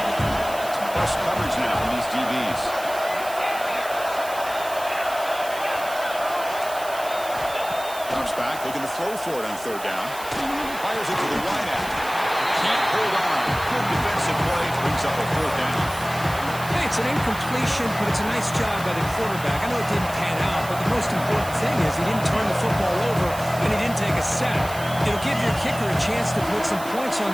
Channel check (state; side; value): noise; right; hiss, 14 dB below the sound